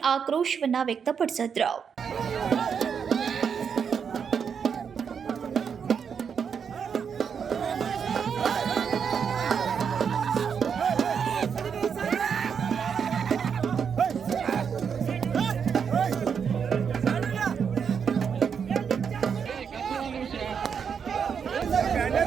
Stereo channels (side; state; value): left; quieter; 6.9 dB